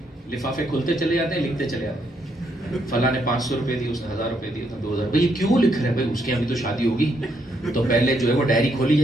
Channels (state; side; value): normal; both; correlation 0.75